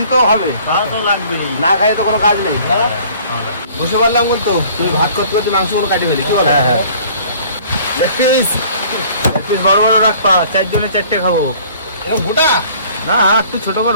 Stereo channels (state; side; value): inverted; both; correlation -0.53